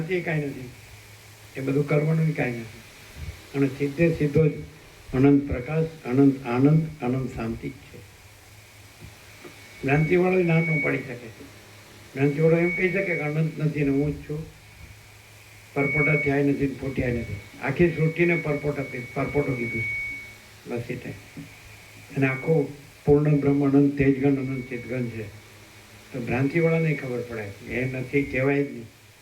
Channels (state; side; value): identical; both; correlation 1.00